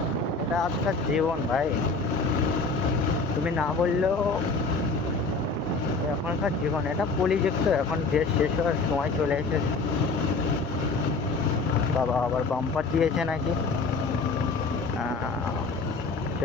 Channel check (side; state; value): right; quieter; 3.9 dB